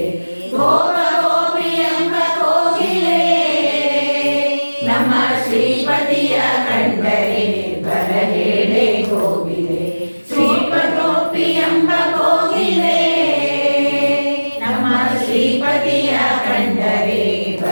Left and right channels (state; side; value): inverted; both; correlation -1.00